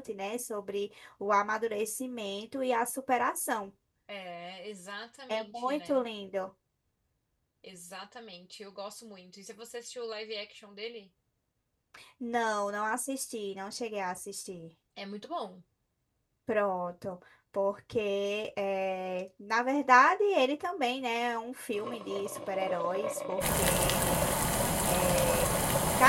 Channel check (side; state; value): both; identical; correlation 1.00